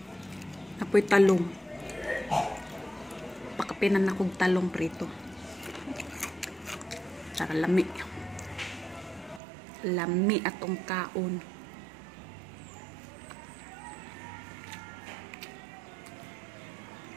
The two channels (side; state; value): left; drops out; at 9.4 s